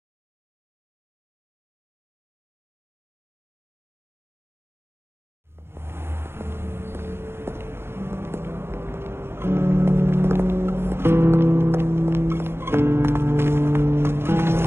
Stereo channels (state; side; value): late; left; 0.12 ms